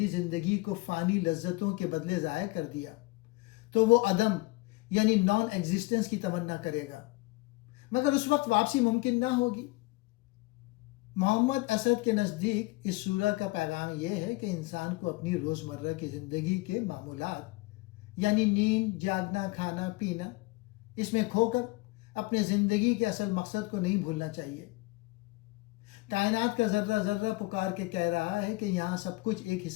زندگی کو فانی لذتوں کے بدلے ضائع کر دیا تو وہ عدم یعنی نان ایگزسٹنس کی تمنا کرے گا، مگر اس وقت واپسی ممکن نہ ہوگی۔ محمد اسد کے نزدیک اس سورہ کا پیغام یہ ہے کہ انسان کو اپنی روزمرہ کی زندگی کے معمولات یعنی نیند، جاگنا، کھانا، پینا، اس میں کھو کر اپنے زندگی کے اصل مقصد کو نہیں بھولنا چاہیے۔ کائنات کا ذرہ ذرہ پکار کے کہہ رہا ہے کہ یہاں سب کچھ ایک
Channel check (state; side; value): quieter; right; 22.7 dB